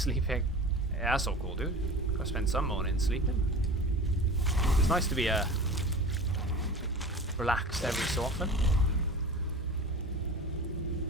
Yeah, that's so cool, dude. I spent some morning sleeping. It's nice to be relaxed every so often.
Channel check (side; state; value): both; normal; correlation 0.35